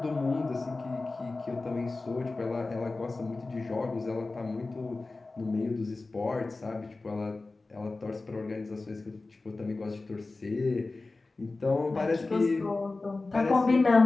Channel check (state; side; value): quieter; right; 3.4 dB